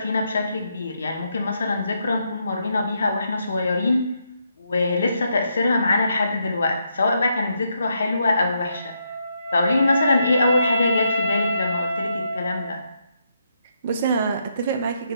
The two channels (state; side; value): inverted; both; correlation -0.80